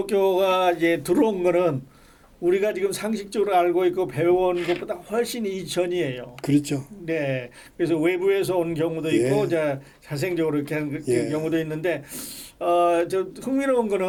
이제 들어온 거는 우리가 지금 상식적으로 알고 있고 배워온 것보다 훨씬 이전이에요. 그렇죠. 네. 그래서 외부에서 온 경우도 있고, 예. 자생적으로 이렇게 하는 예. 경우도 있는데, 저 흥미로운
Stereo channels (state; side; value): identical; both; correlation 1.00